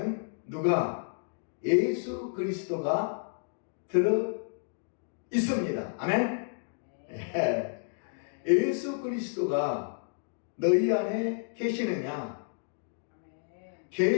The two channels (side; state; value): right; silent; digital silence